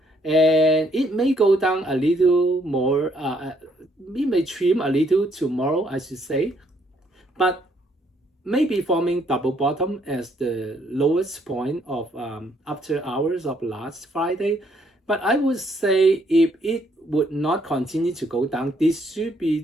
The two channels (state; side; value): normal; both; correlation 0.69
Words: and it may go down a little more. It may trim a little tomorrow, I should say, but maybe forming double bottom as the lowest point of after hours of last Friday. But I would say if it would not continue to go down, this should be